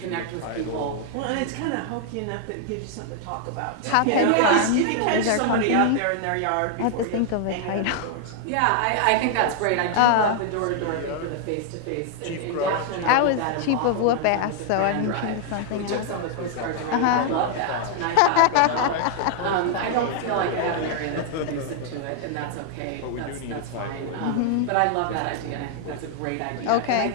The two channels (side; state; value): both; different; correlation 0.00